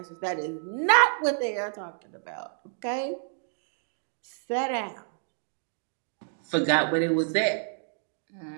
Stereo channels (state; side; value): silent; left; digital silence